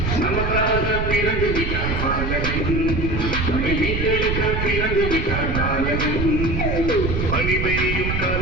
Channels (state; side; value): noise; right; rumble, 1 dB below the sound